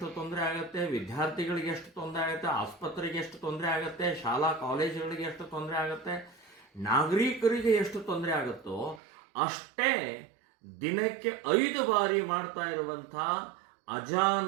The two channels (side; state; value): left; drops out; at 9.0 s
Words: ತೊಂದರೆ ಆಗುತ್ತೆ, ವಿದ್ಯಾರ್ಥಿಗಳಿಗೆ ಎಷ್ಟು ತೊಂದರೆ ಆಗುತ್ತೆ, ಆಸ್ಪತ್ರೆಗೆ ಎಷ್ಟು ತೊಂದರೆ ಆಗುತ್ತೆ, ಶಾಲಾ ಕಾಲೇಜುಗಳಿಗೆ ಎಷ್ಟು ತೊಂದರೆ ಆಗುತ್ತೆ, ನಾಗರಿಕರಿಗೆ ಎಷ್ಟು ತೊಂದರೆ ಆಗುತ್ತೋ ಅಷ್ಟೇ ದಿನಕ್ಕೆ 5 ಬಾರಿ ಮಾಡ್ತಾ ಇರುವಂಥ